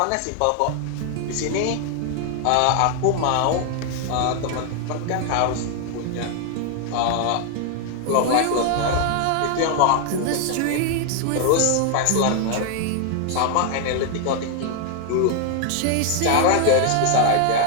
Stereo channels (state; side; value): different; both; correlation 0.00